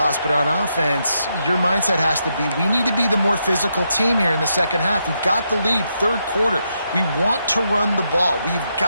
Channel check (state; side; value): inverted; both; correlation -0.81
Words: But on offense, your mindset has to be, we need to be the more physical team here in the second half. We've got the lead, 3rd quarter. We want to run the ball. We've